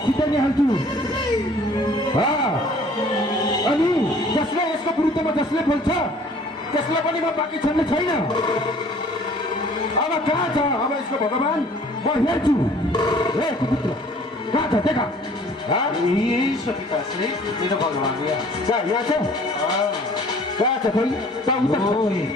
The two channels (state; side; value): normal; both; correlation 0.53